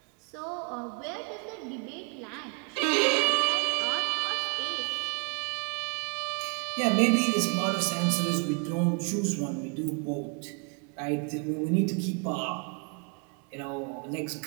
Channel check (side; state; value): left; quieter; 34.5 dB